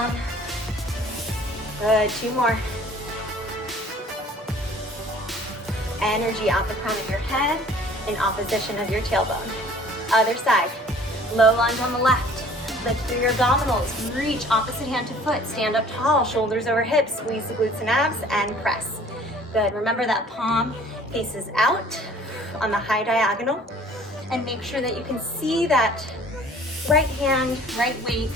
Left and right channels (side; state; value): both; normal; correlation 0.52